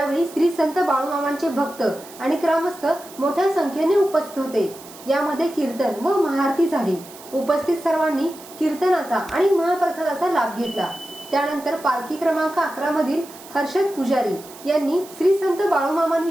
श्री संत बाळूमामांचे भक्त आणि ग्रामस्थ मोठ्या संख्येने उपस्थित होते. यामध्ये कीर्तन व महाआरती झाली. उपस्थित सर्वांनी कीर्तनाचा आणि महाप्रसादाचा लाभ घेतला. त्यानंतर पालखी क्रमांक 11 मधील हर्षद पुजारी यांनी श्री संत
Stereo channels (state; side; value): noise; right; hiss, 19 dB below the sound